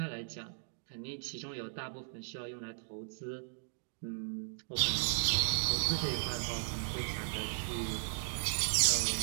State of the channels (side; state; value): left; silent; digital silence